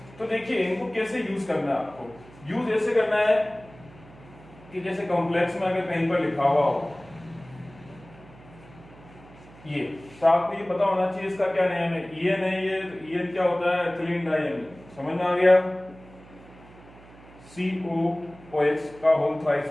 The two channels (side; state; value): right; noise; hum, 22 dB below the sound